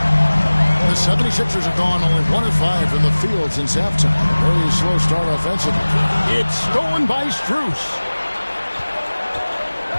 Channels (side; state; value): both; inverted; correlation -1.00